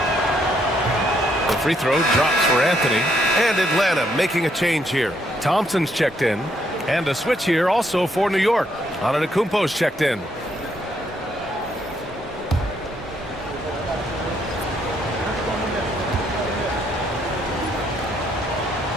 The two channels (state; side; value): normal; both; correlation 0.72